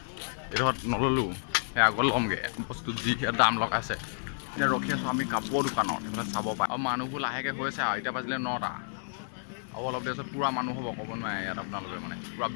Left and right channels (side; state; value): right; silent; digital silence